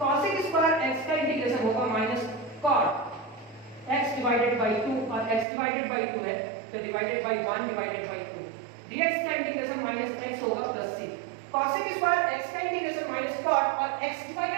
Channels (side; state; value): left; drops out; at 5.5 s